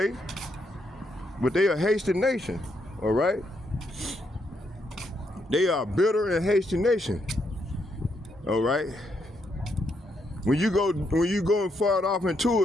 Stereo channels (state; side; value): normal; both; correlation 0.77